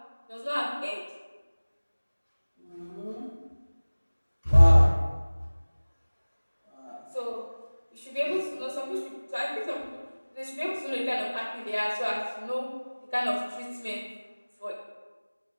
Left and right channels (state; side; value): inverted; both; correlation -1.00